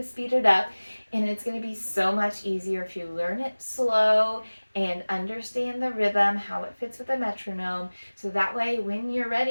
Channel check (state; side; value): inverted; both; correlation -1.00